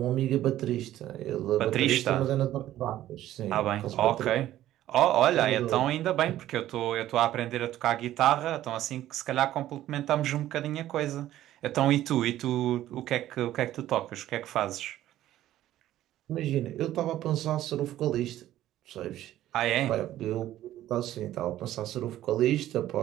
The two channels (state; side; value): quieter; left; 13.5 dB